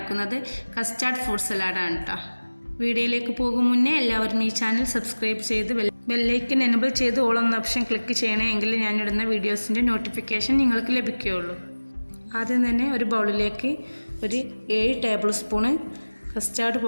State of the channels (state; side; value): inverted; both; correlation -1.00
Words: കസ്റ്റാർഡ് ഫ്രൂട്ട് സലാഡാണ് കേട്ടോ. വീഡിയോയിലേക്ക് പോകും മുന്നേ എല്ലാവരും ഈ ചാനൽ സബ്സ്ക്രൈബ് ചെയ്ത് ബെല്ലൈക്കൻ എനബിൾ ചെയ്ത് ഓൾ എന്ന ഓപ്ഷൻ ക്ലിക്ക് ചെയ്യണേ, എങ്കിൽ ഞാനിടുന്ന വീഡിയോസിൻ്റെ നോട്ടിഫിക്കേഷൻ നിങ്ങൾക്ക് ലഭിക്കുകയുള്ളൂ. ആദ്യം തന്നെ ഒരു ബൗളിലേക്ക് ഒരു 7 ടേബിൾ സ്പൂണ് കസ്റ്റാർഡ്